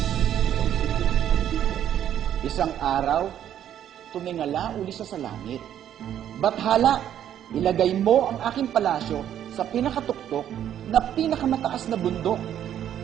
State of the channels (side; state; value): left; quieter; 10.4 dB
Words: Isang araw, tumingala uli siya sa langit. Bathala, ilagay mo ang aking palasyo sa pinakatuktok na pinakamataas na bundok.